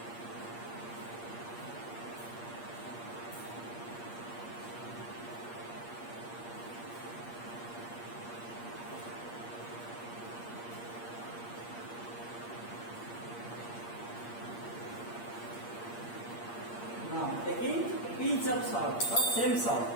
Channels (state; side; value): late; right; 8.5 ms